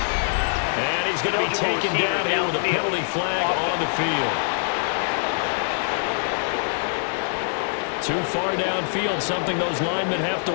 And he's going to be taken down here with a penalty flag on the field. Too far downfield, something those linemen have to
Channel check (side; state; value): right; silent; digital silence